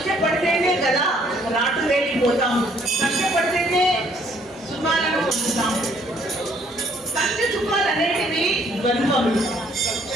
కదా రాటు వేలిపోతాము, కష్టపడితేనే సుఖాలను పొందుతాము. కష్ట సుఖాలు అనేటివి ద్వంద్వములు,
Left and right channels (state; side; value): normal; both; correlation 0.64